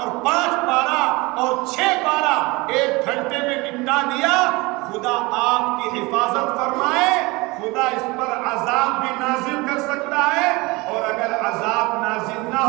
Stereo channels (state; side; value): quieter; left; 24.0 dB